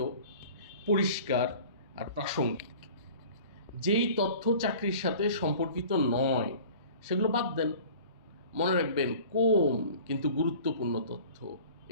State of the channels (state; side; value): inverted; both; correlation -0.44